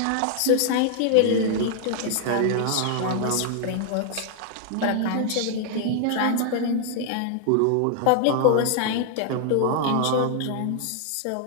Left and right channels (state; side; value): different; both; correlation 0.00